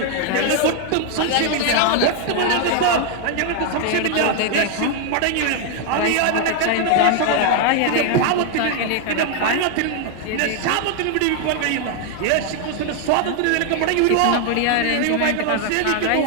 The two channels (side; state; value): both; different; correlation 0.01